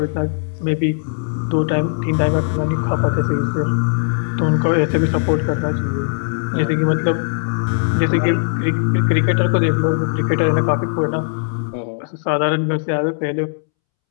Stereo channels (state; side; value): silent; right; 67 dB below the other